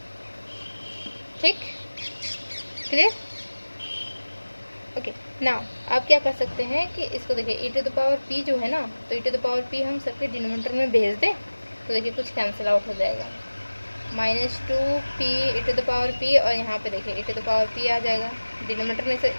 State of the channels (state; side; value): inverted; both; correlation -1.00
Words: ठीक, क्लियर। ओके, नाउ आप क्या कर सकते हैं कि इसको देखिए e to the power p जो है ना, तो e to the power p हम सबके डिनोमिनेटर में भेज दें तो देखिए कुछ कैंसिल आउट हो जाएगा। -2p e to the power p, और यहाँ पे देखिए e to the power p आ जाएगा, डिनोमिनेटर में